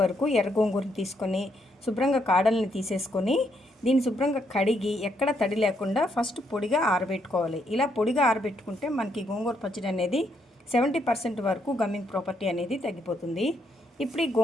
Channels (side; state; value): both; normal; correlation 0.75